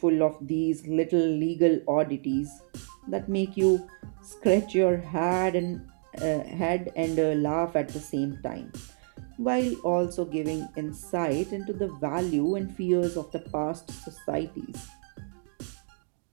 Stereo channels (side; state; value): left; silent; 59 dB below the other